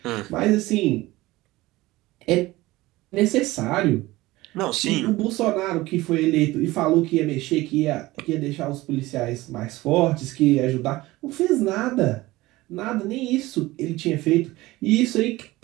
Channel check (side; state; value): left; quieter; 18.9 dB